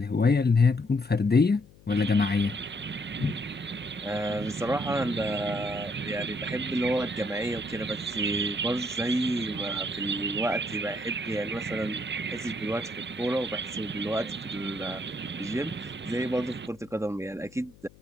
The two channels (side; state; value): left; noise; hum, 25 dB below the sound